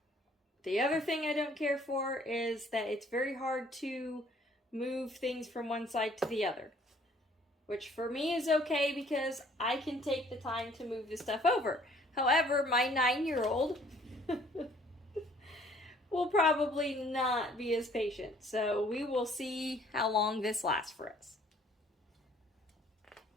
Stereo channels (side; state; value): both; normal; correlation 0.59